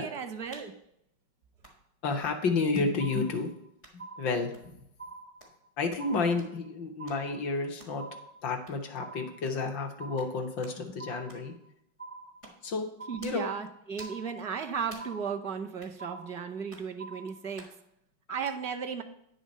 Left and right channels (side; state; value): right; late; 5.4 ms